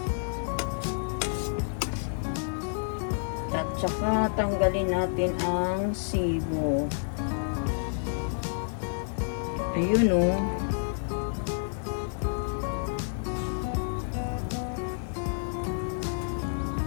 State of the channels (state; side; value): silent; right; 58 dB below the other